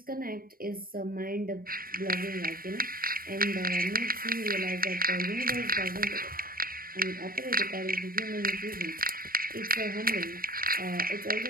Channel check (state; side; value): late; left; 0.42 ms